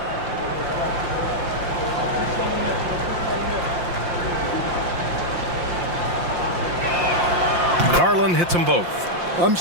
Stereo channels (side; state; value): left; late; 5.7 ms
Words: Garland hits them both. I'm